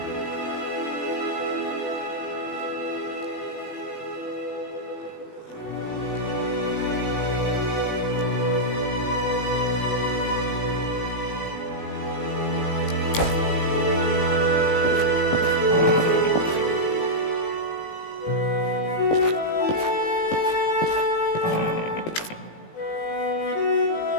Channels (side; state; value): right; late; 18 ms